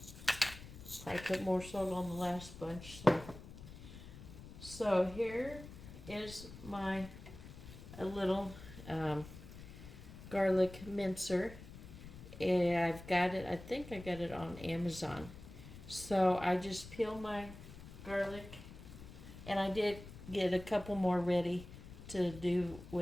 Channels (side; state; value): left; noise; rumble, 14 dB below the sound